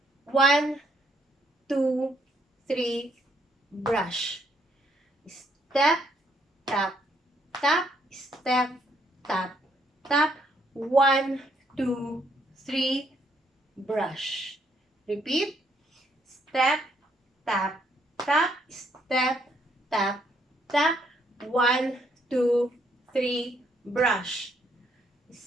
1, 2, 3, brush. Step, tap, tap, step, tap, tap. 1, 2, 3, brush. Repeat. Step, tap, tap, step, tap, tap. 1, 2, 3, brush.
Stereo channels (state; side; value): normal; both; correlation 0.71